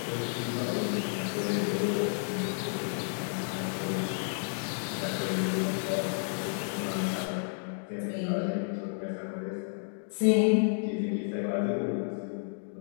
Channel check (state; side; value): silent; right; digital silence